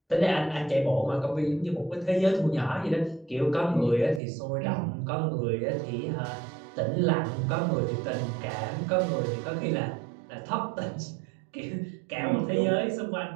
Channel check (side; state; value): left; drops out; at 4.2 s